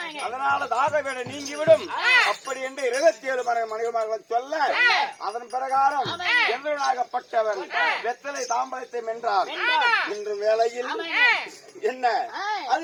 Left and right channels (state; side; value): identical; both; correlation 1.00